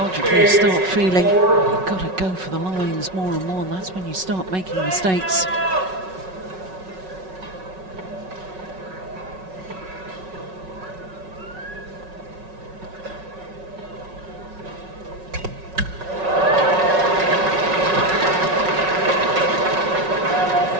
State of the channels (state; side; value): late; left; 5.4 ms